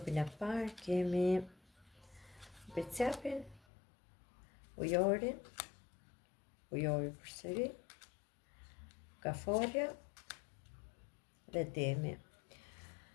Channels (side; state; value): right; drops out; at 3.6 s